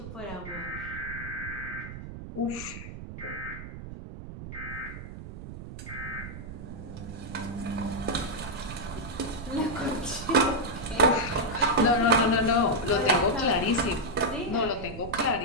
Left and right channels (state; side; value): noise; right; rumble, 11 dB below the sound